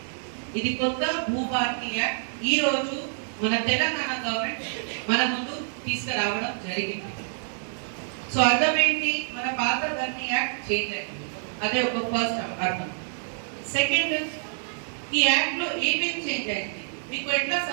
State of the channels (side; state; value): left; silent; digital silence